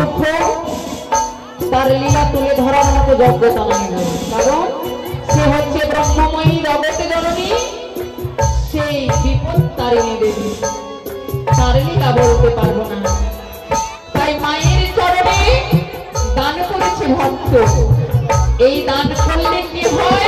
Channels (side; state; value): both; identical; correlation 1.00